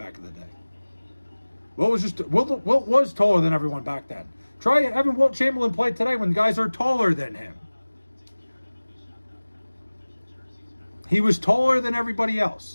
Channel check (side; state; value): both; inverted; correlation -1.00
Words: in the day. Wilt was taller than everyone back then. Try having Wilt Chamberlain play today when guys are taller than him. He was taller than everybody